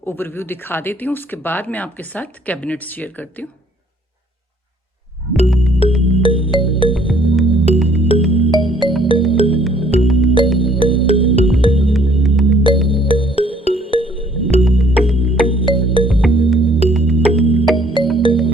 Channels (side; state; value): both; normal; correlation 0.61